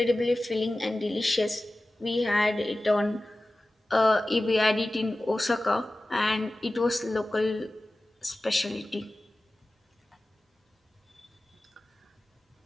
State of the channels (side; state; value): both; normal; correlation 0.96